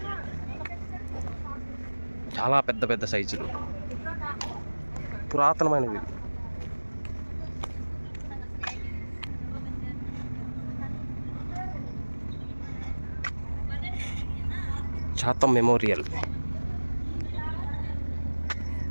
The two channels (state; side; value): inverted; both; correlation -1.00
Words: చాలా పెద్ద సైజులు, పురాతనమైనవి. చాతం మెమోరియల్.